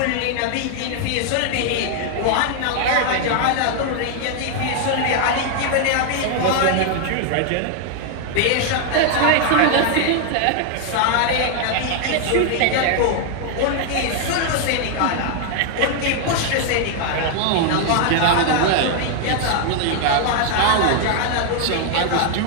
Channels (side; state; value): both; different; correlation 0.00